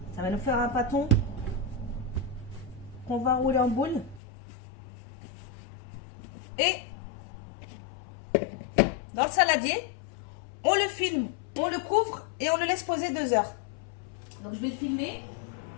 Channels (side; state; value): right; drops out; at 4.2 s